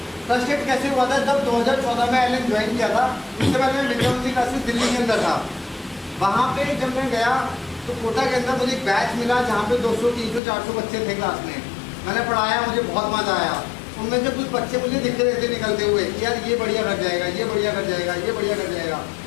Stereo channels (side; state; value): right; drops out; at 10.4 s